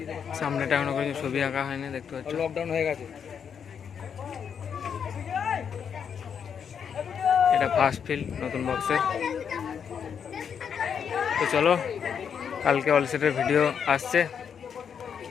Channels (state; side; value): quieter; right; 7.4 dB